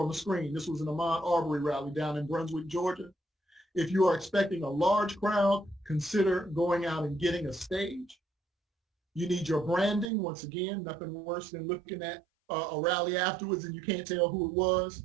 the screen. This was an Ahmaud Arbery rally down in Brunswick, Georgia. If you are expecting a large crowd, consider going out and getting a stage. You need your branding. Once again, nothing worse than looking at a rally afterwards and you can't tell who it was.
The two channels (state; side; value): drops out; left; at 10.1 s